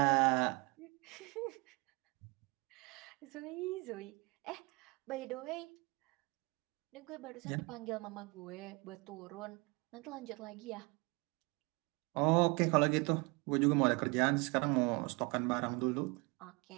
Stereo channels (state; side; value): quieter; left; 28.1 dB